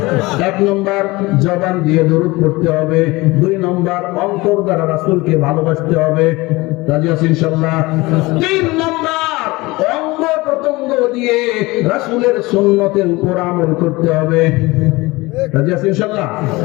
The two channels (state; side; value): quieter; right; 21.9 dB